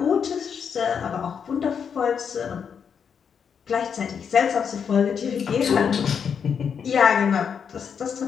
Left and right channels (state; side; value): quieter; right; 7.0 dB